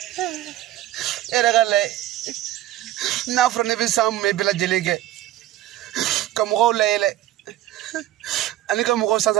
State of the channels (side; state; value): left; quieter; 14.1 dB